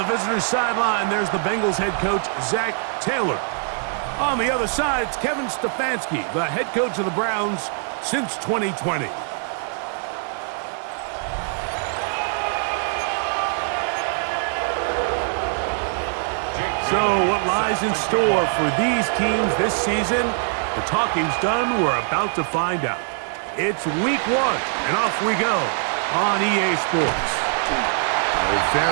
the visitor's sideline, there's the Bengals head coach, Zach Taylor. On the other side, it's Kevin Stefanski, the head coach of the Browns since 2020. So what lies in store for these teams this season? The talking's done. We're about to find out. It's week 1, and off we go on EA Sports. A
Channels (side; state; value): left; silent; 58 dB below the other